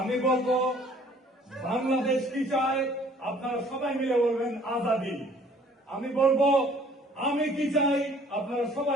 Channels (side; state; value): both; normal; correlation 0.56